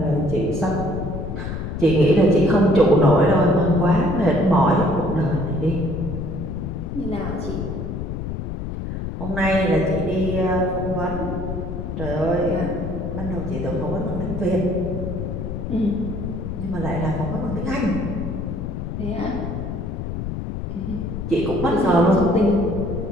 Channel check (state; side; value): noise; left; rumble, 5 dB below the sound